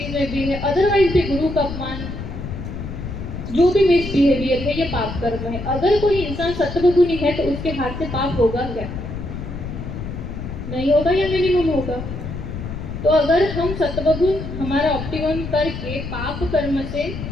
में भी है, अदरवाइज भी गुरु का अपमान, जो भी मिसबिहेवियर है ये पाप कर्म है। अगर कोई इंसान सत्वगुणी है तो उसके हाथ से पाप होगा क्या? नहीं होगा या मिनिमम होगा। तो अगर हम सत्वगुण हमारा ऑप्टिमम करके पाप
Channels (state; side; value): noise; left; rumble, 7 dB below the sound